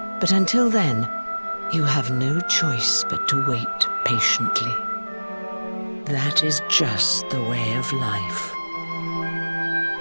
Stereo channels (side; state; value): both; inverted; correlation -1.00